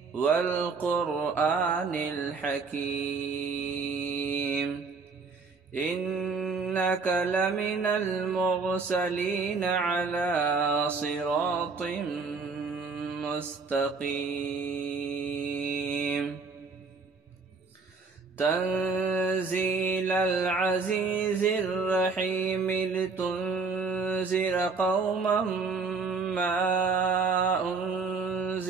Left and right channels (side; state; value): left; quieter; 4.6 dB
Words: والقرآن الحكيم إنك لمن المرسلين على صراط مستقيم تنزيل العزيز الرحيم لتنذر قوما ما